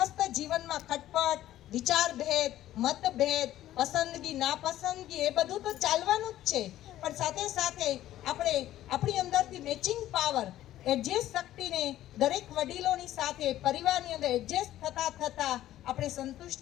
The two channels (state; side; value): quieter; right; 13.5 dB